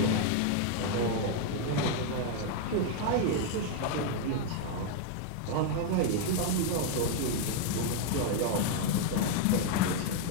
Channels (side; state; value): both; different; correlation 0.00